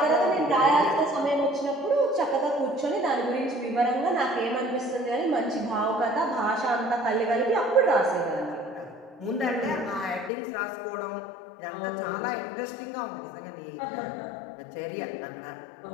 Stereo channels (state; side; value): drops out; right; at 10.3 s